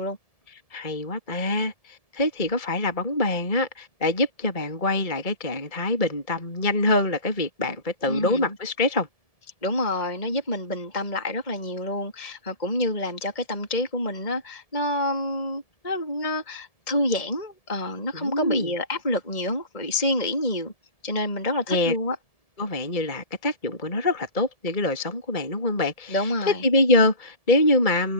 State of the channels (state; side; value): late; right; 1.7 ms